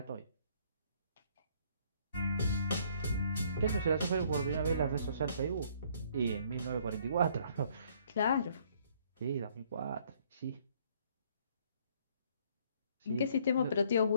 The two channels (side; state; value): both; inverted; correlation -0.62